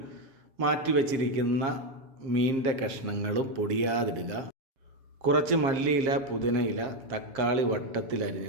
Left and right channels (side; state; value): left; late; 7.5 ms